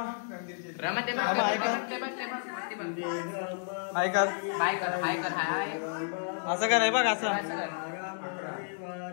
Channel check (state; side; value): silent; right; digital silence